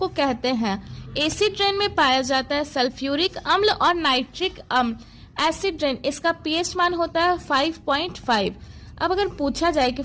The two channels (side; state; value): both; identical; correlation 1.00